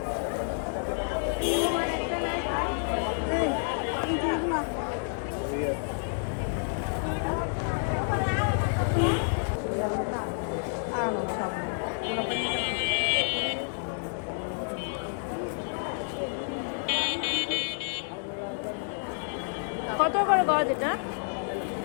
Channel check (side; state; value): right; silent; 58 dB below the other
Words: কত করে গজ এটা?